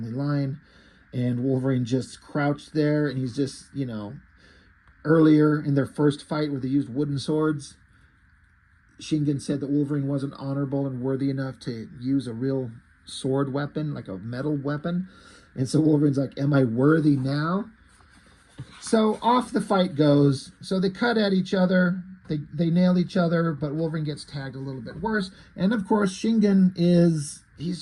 line. And Wolverine just crouched there, and he's just, you know, earlier in their first fight where they used wooden swords, Shingen said that Wolverine wasn't honorable and worthy enough to use a real sword weapon, like a metal weapon. And so Wolverine's like, am I worthy now? So off the fight goes. So they cut at each other. They nail each other, but Wolverine gets tagged a little bit worse. And of course, Shingen he's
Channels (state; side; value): identical; both; correlation 1.00